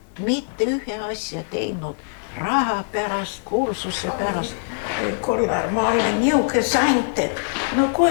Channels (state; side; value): silent; right; digital silence